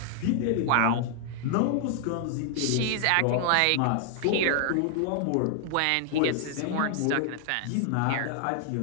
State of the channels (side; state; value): both; different; correlation 0.00